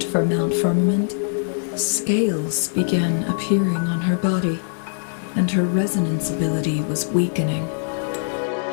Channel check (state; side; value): silent; right; digital silence